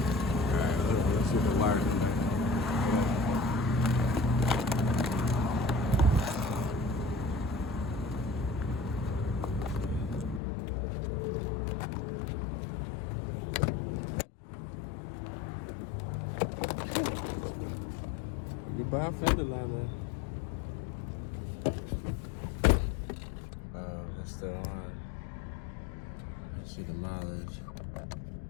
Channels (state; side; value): drops out; right; at 10.4 s